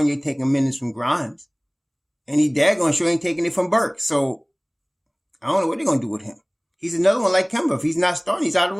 taking minutes from Grimes. And he daggone sure ain't taking it from Burks. So I don't know what they're going to do with him. He's another one like Kemba. If he's not starting, he's out of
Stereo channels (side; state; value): both; identical; correlation 1.00